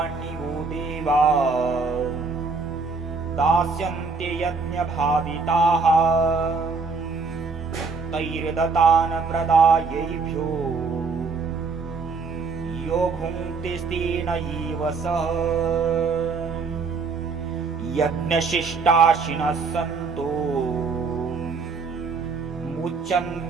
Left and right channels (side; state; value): left; quieter; 4.6 dB